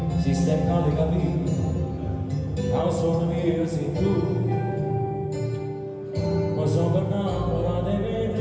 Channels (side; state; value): both; identical; correlation 1.00